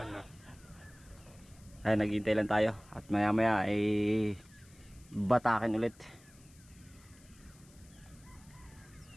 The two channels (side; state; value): left; noise; hiss, 26 dB below the sound